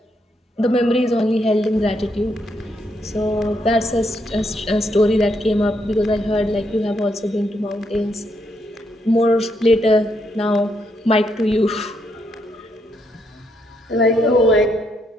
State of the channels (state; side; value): normal; both; correlation 0.77